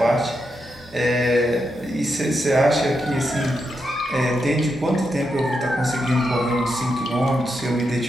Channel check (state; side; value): normal; both; correlation 0.84